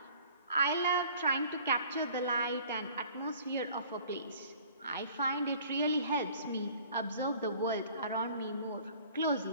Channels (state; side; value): inverted; both; correlation -0.51